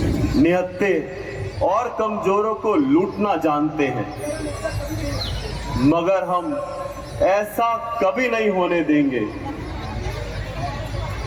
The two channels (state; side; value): identical; both; correlation 1.00